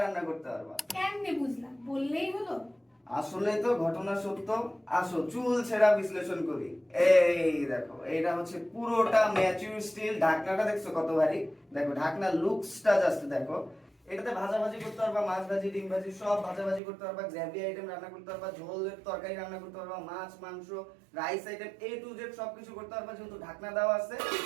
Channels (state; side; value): drops out; left; at 16.8 s